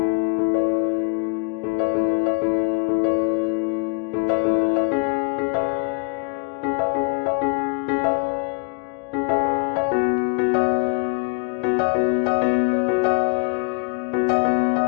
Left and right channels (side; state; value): right; quieter; 32.6 dB